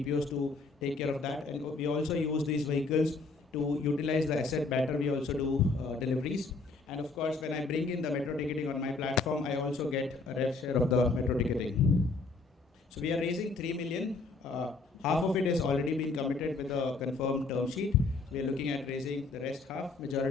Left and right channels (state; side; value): quieter; right; 3.8 dB